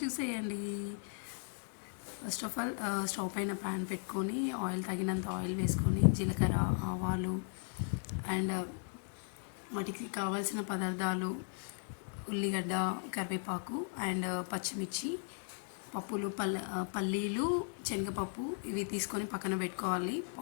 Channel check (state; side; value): silent; right; 53 dB below the other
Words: చూసేయండి. ఫస్ట్ ఆఫ్ ఆల్ స్టవ్ పైన ప్యాన్ పెట్టుకొని ఆయిల్ తగినంత ఆయిల్ వేసుకొని జీలకర్ర, ఆవాలు అండ్ వాటికి కావాల్సిన పదార్థాలు ఉల్లిగడ్డ, కరివేపాకు అండ్ పచ్చిమిర్చి, పప్పులు, పల్లీలు, శనగపప్పు ఇవి తీసుకొని పక్కన పెట్టుకోవాలి.